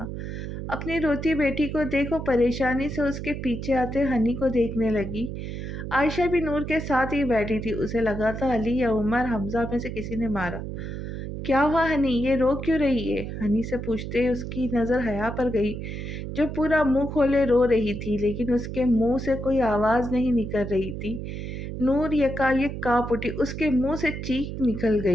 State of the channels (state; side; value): noise; right; hum, 6 dB below the sound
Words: اپنی روتی بیٹی کو دیکھ وہ پریشانی سے اس کے پیچھے آتے ہنی کو دیکھنے لگی۔ عائشہ بھی نور کے ساتھ ہی بیٹھی تھی۔ اسے لگا تھا علی یا عمر حمزہ میں سے کسی نے مارا۔ کیا ہوا ہنی، یہ رو کیوں رہی ہے؟ ہنی سے پوچھتے اس کی نظر حیا پر گئی، جو پورا منہ کھولے رو رہی تھی، لیکن اس کے منہ سے کوئی آواز نہیں نکل رہی تھی۔ نور یکایک کانپ اٹھی، اس کے منہ سے چیخ نکل